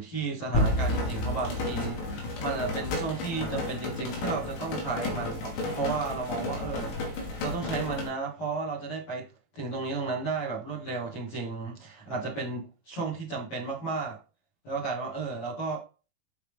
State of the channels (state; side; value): late; right; 18 ms